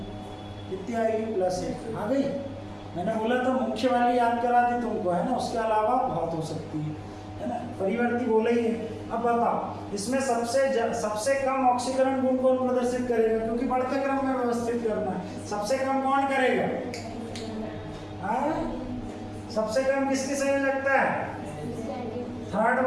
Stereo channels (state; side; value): identical; both; correlation 1.00